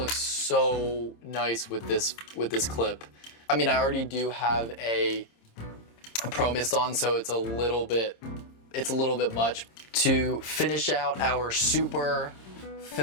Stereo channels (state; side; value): late; right; 26 ms